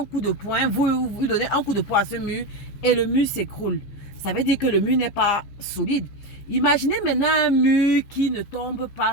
coup de poing, vous donnez un coup de poing à ce mur et le mur s'écroule. Ça veut dire que le mur n'est pas solide. Imaginez maintenant un mur qui ne tombe pas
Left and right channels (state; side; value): late; right; 14 ms